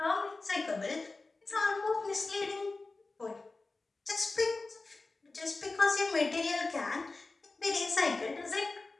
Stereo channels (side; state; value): right; quieter; 3.5 dB